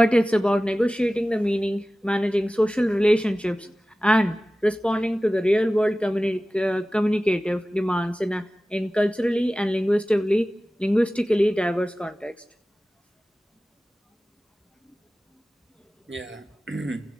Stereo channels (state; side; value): normal; both; correlation 0.96